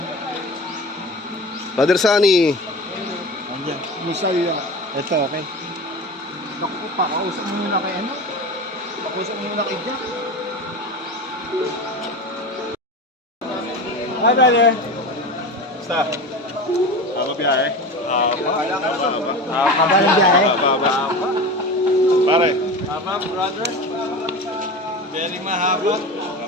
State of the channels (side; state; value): both; normal; correlation 0.29